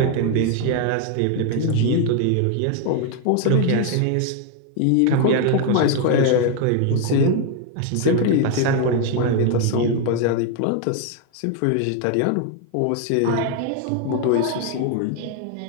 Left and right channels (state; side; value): different; both; correlation 0.01